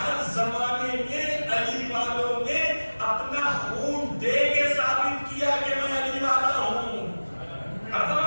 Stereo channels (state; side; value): inverted; both; correlation -1.00